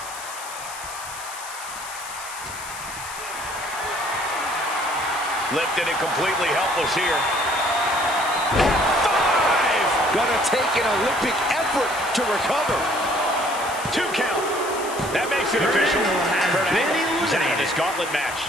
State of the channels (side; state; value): left; noise; hiss, 12 dB below the sound